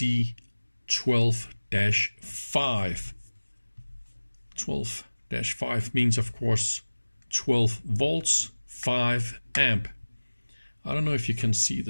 12-5. 12-5 means, of course, 12 volts, 5 amp. I don't know if you can see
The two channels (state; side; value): inverted; both; correlation -1.00